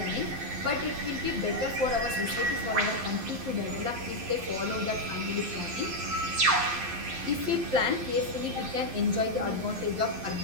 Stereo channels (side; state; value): left; late; 11 ms